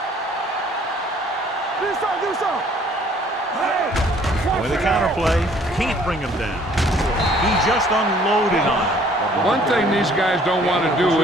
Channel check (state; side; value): normal; both; correlation 0.58